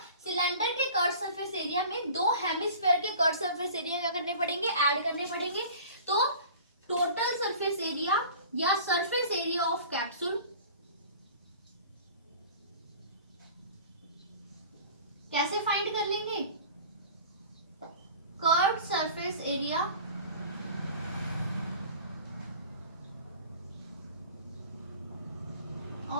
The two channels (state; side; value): inverted; both; correlation -0.42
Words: सिलेंडर के कर्व सरफेस एरिया में दो हेमिस्फीयर के कर्व सरफेस एरिया क्या करने पड़ेंगे, ऐड करने पड़ेंगे। तो टोटल सरफेस एरिया या सरफेस एरिया ऑफ कैप्सूल कैसे फाइंड कर लेंगे, curve surface area